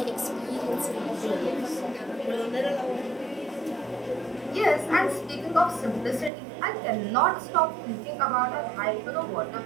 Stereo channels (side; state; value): left; drops out; at 6.3 s